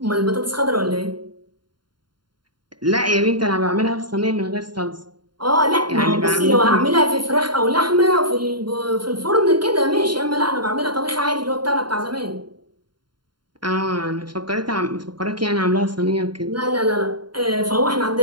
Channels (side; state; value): left; late; 0.72 ms